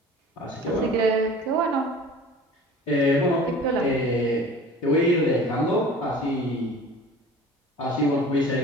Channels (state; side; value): normal; both; correlation 0.43